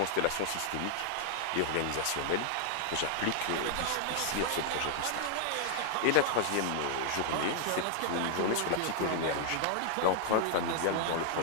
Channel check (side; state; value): both; different; correlation 0.00